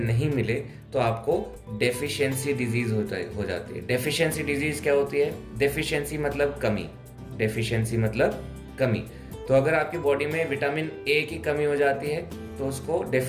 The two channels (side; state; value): both; identical; correlation 1.00